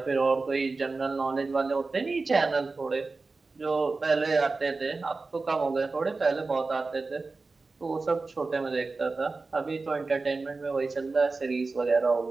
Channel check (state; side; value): quieter; left; 3.8 dB